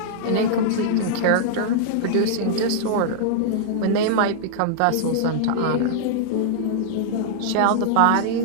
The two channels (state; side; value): different; both; correlation -0.01